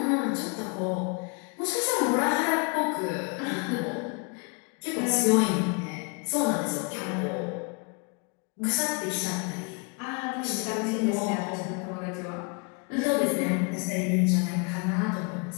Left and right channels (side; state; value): right; quieter; 33.1 dB